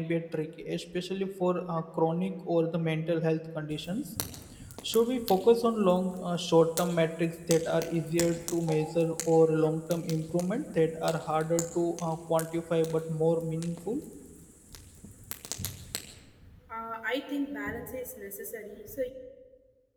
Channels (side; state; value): both; identical; correlation 1.00